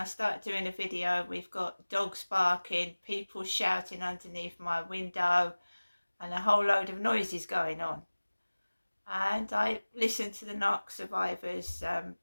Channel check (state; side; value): inverted; both; correlation -1.00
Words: start doing a video, we've got dogs barking, people shouting underneath my window, and a whole load of noises going on. And I listened to the Narc Survivors